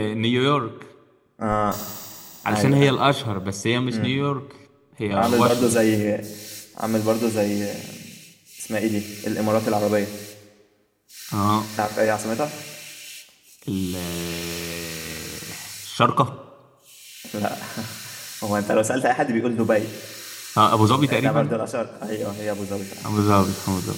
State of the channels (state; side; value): identical; both; correlation 1.00